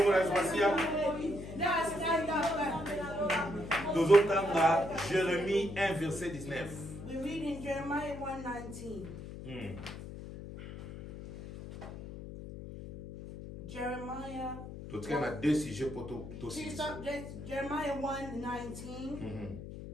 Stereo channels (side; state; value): left; noise; hum, 11 dB below the sound